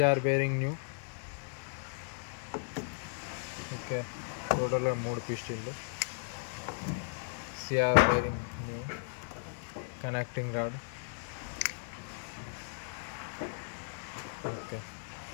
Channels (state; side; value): silent; right; 54 dB below the other